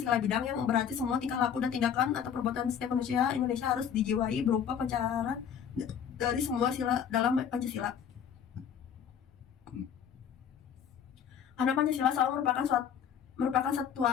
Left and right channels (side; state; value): right; quieter; 8.2 dB